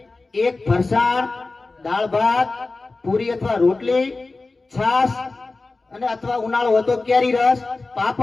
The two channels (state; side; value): quieter; right; 3.5 dB